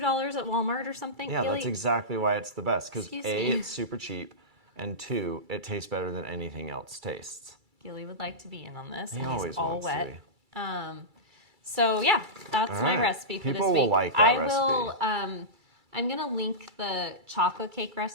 at Walmart or something. Yeah, Gilly? That's exactly why it's the best. Because A, me. it's super cheap, and 2, it tastes better than anything else tastes. Gilly would like to be in on this. He and always he's all wants wet. to be. So yeah, that's my recipe for this week. People will like that recipe. I'm gonna link the chocolate cake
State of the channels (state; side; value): late; left; 2.3 ms